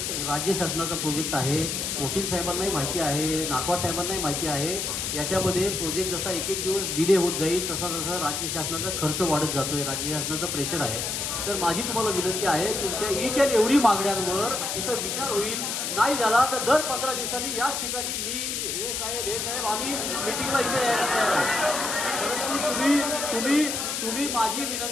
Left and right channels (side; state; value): left; noise; hiss, 2 dB below the sound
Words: राज्य शासनाचा प्रोजेक्ट आहे. वकील साहेबांनाही माहिती आहे, नाकवा साहेबांनाही माहिती आहे. याच्यामध्ये प्रोजेक्ट जसा एक दिवस डिले होत जाईल तसा तसा राज्य शासनाचा खर्च वाढत जातोय, राज्य शासनाचं प्रेशर आहे. तर माझी तुम्हाला विनंती आहे तुमच्या ईच अँड एव्हरी मागण्यांवर इथं विचार होईल. नाही झाला तर दर 15 दिवसांनी याच ठिकाणी मी हे साहेब आम्ही मिटिंगला इथे तुम्ही माझी